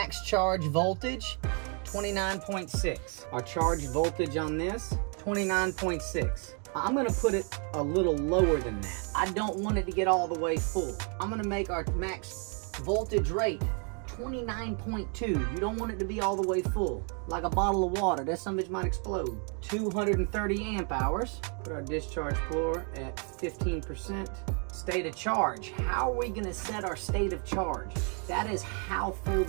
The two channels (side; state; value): left; quieter; 38.4 dB